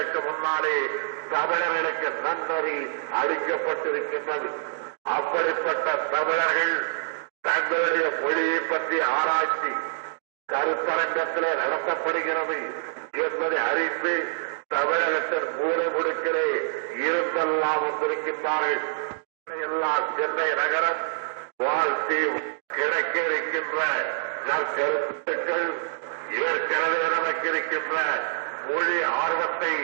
முன்னாலே தமிழர்களுக்கு நன்னறி அளிக்கப்பட்டிருக்கின்றது. அப்படிப்பட்ட தமிழர்கள் தங்களுடைய மொழியை பற்றி ஆராய்ச்சி கருத்தரங்கத்திலே நடத்தப்படுகிறது என்பதை அறிந்து தமிழகத்தின் மூலை முடுக்கிலே இருந்தெல்லாம் வந்திருக்கின்றார்கள். எல்லாம் சென்னை நகரம் வாழ்த்தி கிடைக்க இருக்கின்ற நற்கருத்துக்கள் ஏற்கனவே நமக்கு இருக்கின்ற மொழி ஆர்வத்தை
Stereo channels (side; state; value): left; silent; digital silence